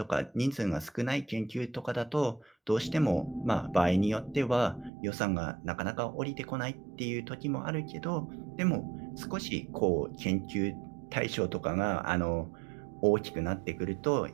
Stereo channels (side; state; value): left; drops out; at 4.9 s